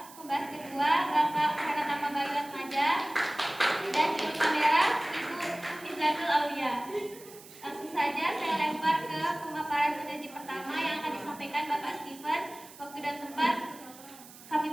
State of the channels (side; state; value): right; noise; hiss, 19 dB below the sound